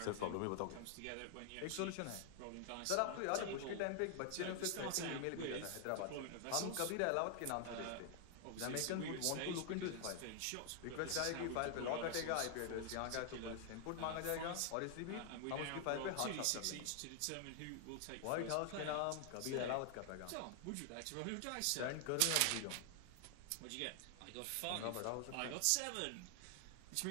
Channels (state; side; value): different; both; correlation 0.00